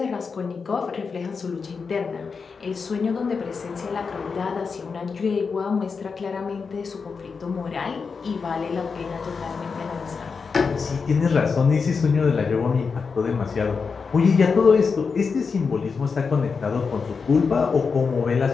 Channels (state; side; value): quieter; right; 5.2 dB